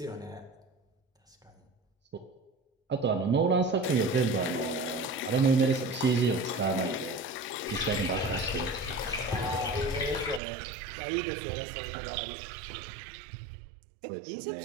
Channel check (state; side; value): drops out; left; at 10.4 s